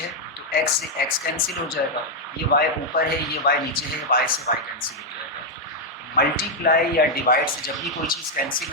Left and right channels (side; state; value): both; normal; correlation -0.01